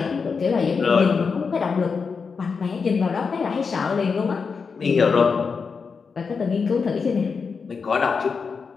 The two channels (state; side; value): quieter; right; 5.3 dB